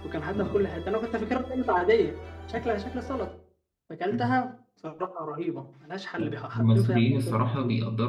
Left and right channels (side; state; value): both; identical; correlation 1.00